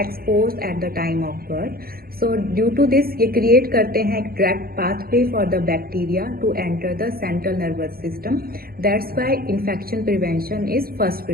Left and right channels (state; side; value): late; left; 0.44 ms